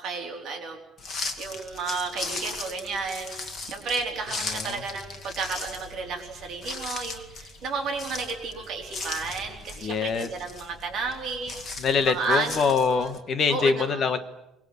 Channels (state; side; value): normal; both; correlation 0.61